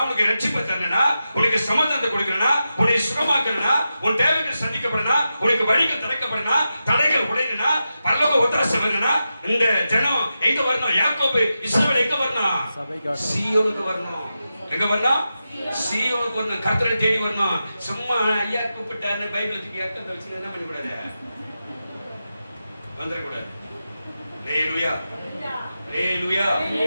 உனக்கு ரட்சிப்பை தரணும்னா, உனக்கு சமாதானத்தை கொடுக்கணும்னா, உன்னை சுகமாக்கணும்னா, உன் தேவைகள் சந்திக்கப்படணும்னா, உனக்கு வழிகள் திறக்கப்படணும்னா, தடைகள் உடையணும்னா, பரலோக ஒத்தாசை வரணும்னா, இந்த ஜனம் எங்க வரணும்? யாக்கோபு இஸ்ரவேல் எங்க வரணும்? சீயோனுக்கு வரணும். எங்க வரணும்? சீயோனுக்கு வரணும். கர்த்தரை தேடி வரணும். சும்மா ஐயா கூப்பிட்டாருன்னு பைபிள் தூக்கி அர்த்தம் வச்சு என்ன பண்ணக்கூடாது, வந்துடக்கூடாது. அல்லேலூயா, அல்லேலூயா.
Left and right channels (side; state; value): both; inverted; correlation -0.90